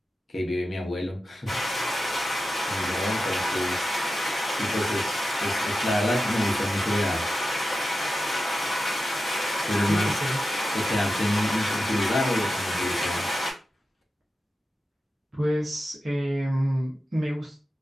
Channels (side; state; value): both; normal; correlation 0.92